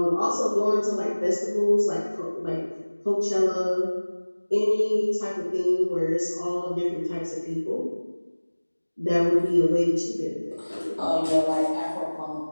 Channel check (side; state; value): both; inverted; correlation -1.00